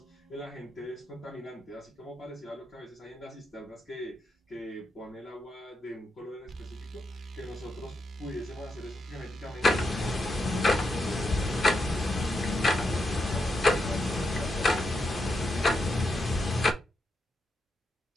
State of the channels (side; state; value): both; normal; correlation 0.83